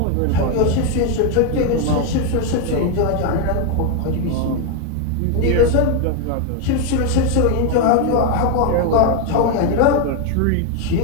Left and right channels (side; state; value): both; different; correlation 0.01